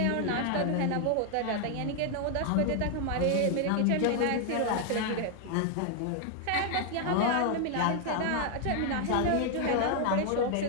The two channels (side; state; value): both; different; correlation 0.00